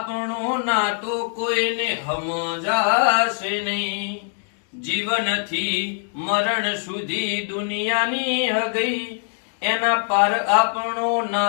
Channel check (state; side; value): silent; right; digital silence